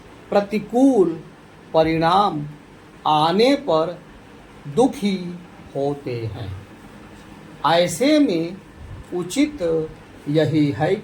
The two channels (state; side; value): identical; both; correlation 1.00